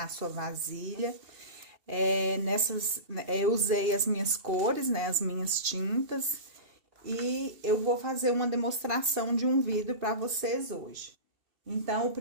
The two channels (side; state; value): left; late; 2.7 ms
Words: a sua vasilha. Eu usei as minhas cores, né? As minhas tintas. E eu vou fazer uma demonstração de um vidro para vocês hoje. Então, o